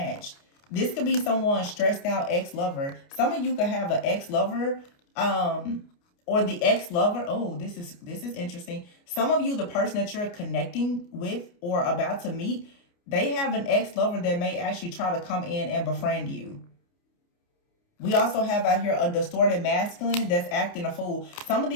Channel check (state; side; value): late; right; 29 ms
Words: This could be someone stressed out ex-lover. Some of you could have an ex-lover, or the ex-lover. Oh, this is interesting. Some of you, the person that you're connecting with or about to meet, they have an ex-lover that may actually try to come in and befriend you. We also have out here a distorted masculine that's acting a fool. Some of